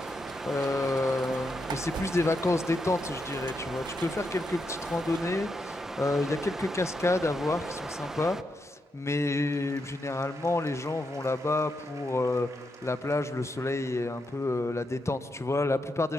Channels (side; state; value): both; normal; correlation 0.83